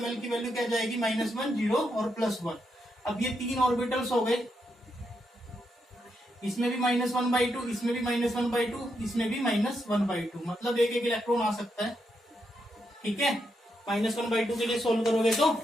की वैल्यू क्या जाएगी, -1, 0 और +1। अब ये 3 ऑर्बिटल्स हो गए, इसमें भी -1/2, इसमें भी -1/2, इसमें भी -1/2, मतलब एक इलेक्ट्रॉन आ सकता है, ठीक है। -1/2 के लिए सोल्व करोगे तो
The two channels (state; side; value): normal; both; correlation 0.81